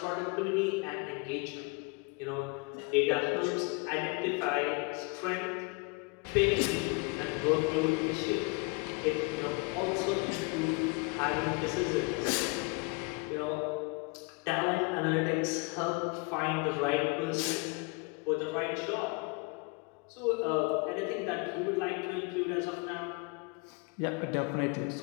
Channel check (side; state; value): right; quieter; 30.5 dB